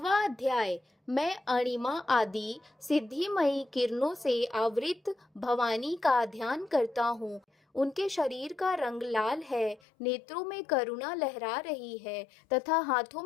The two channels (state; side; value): drops out; right; at 9.8 s